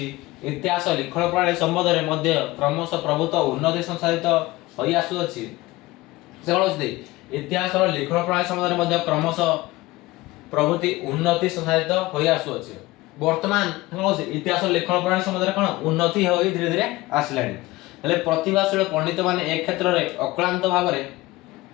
इतिहास लिखण प्रणाली संबंध रे मध्य क्रमशः प्रभुत्व उन्नति संसाधित होई आसु अछि से कोनथि इतिहास रो लिखण प्रणाली संबंध रे मध्य क्रमशः प्रभुति उन्नति संसाधित होई आसु अछि वर्तमान इतिहास लेखन प्रणाली संबंध में कौन उन्नति हो धीरे धीरे आसलानी हेले प्रतिभाशील पंडित माने एक क्षेत्र रे अक्लांत भाव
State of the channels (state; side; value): quieter; right; 19.5 dB